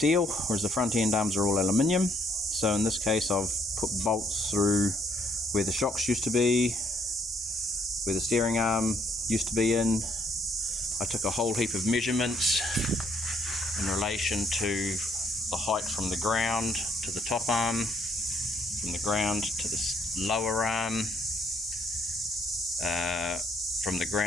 whereas the front end arms are all aluminium. So in this case I've put bolts through where the shocks used to be, where the steering arm used to be in. I took a whole heap of measurements in relation to the height from the ground to the top arm, from the ground to the lower arm, from the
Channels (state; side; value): normal; both; correlation 0.69